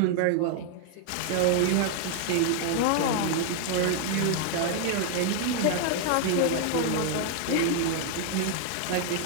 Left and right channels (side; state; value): both; different; correlation 0.00